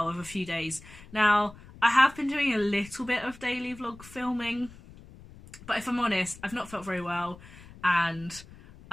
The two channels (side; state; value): left; noise; rumble, 20 dB below the sound